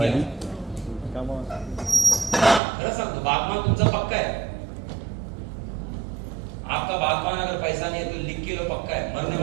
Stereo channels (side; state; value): left; drops out; at 2.6 s